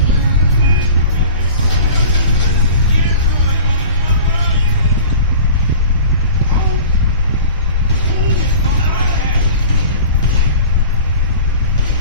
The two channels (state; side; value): inverted; both; correlation -0.40